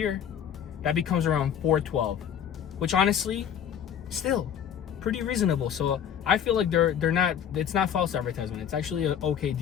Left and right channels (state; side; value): quieter; right; 8.8 dB